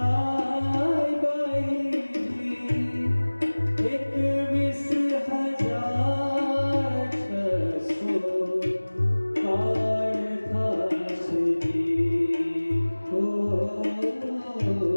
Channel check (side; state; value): both; inverted; correlation -1.00